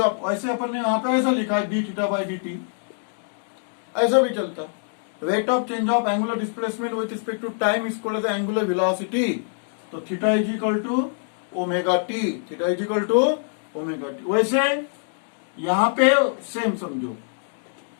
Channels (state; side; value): silent; right; digital silence